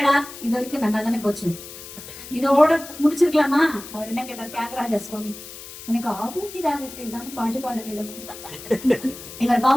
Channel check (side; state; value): left; noise; hiss, 14 dB below the sound